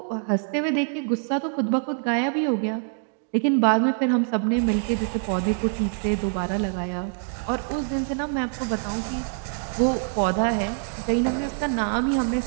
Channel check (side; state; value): left; silent; 62 dB below the other